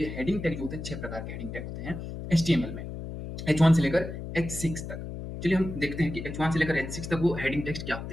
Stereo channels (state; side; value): noise; left; hum, 8 dB below the sound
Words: हेडिंग टैग जो होते हैं 6 प्रकार के हेडिंग टैग होते हैं एचटीएमएल में, H1 से लेकर H6 तक। चलिए हम देखते हैं कि H1 से लेकर H6 तक वो हेडिंग टेक्स्ट क्या